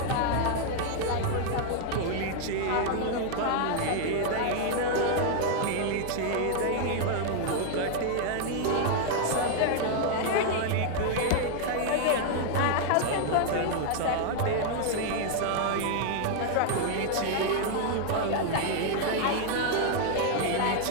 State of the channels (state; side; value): different; both; correlation 0.00